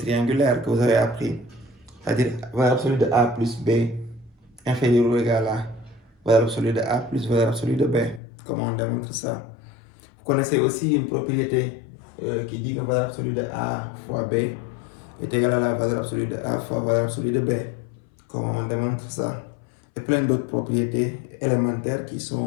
que vous avez appris, c'est-à-dire valeur absolue de A plus B inférieur ou égal à valeur absolue de A plus valeur absolue de B. Comment on démontre ça? Vous connaissez aussi une propriété qui dit que valeur absolue de A fois B est égale à la valeur absolue de A fois valeur absolue de B. Comment on démontre ça? Et plein d'autres propriétés élémentaires qui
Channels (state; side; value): drops out; right; at 8.2 s